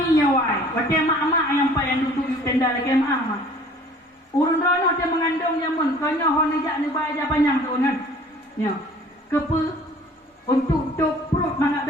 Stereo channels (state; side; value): normal; both; correlation 0.51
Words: nyawai. Waktu mak-mak yang payah duduk di tenda lagi mak. Urun rono dia mengandung jamun. Kanya hon ajak ni bayar panjang tu kan. Ya. Kepa untuk perut mangak